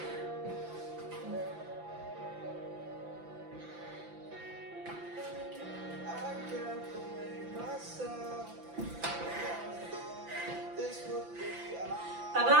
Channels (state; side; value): late; left; 5.9 ms